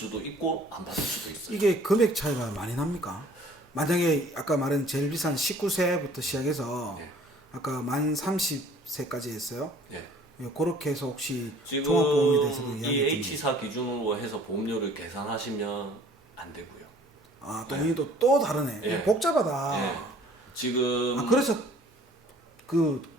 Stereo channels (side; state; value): both; normal; correlation 0.54